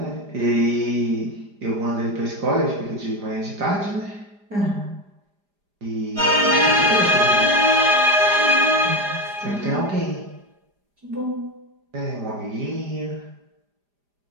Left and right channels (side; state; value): left; late; 4.9 ms